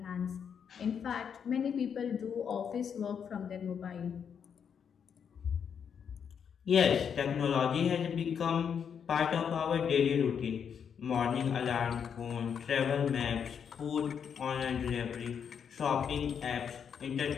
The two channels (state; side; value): quieter; right; 7.4 dB